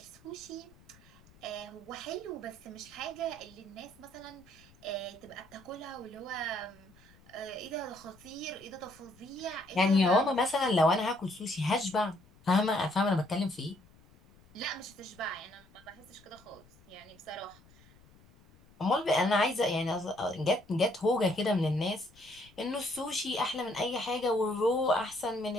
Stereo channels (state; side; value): noise; left; rumble, 27 dB below the sound